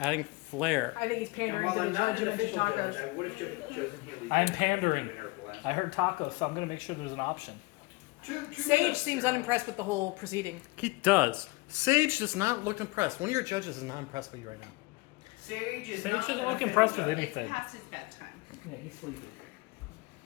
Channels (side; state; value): right; quieter; 24.0 dB